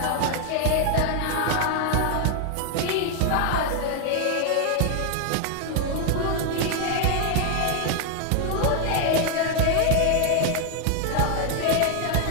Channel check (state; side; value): different; both; correlation 0.00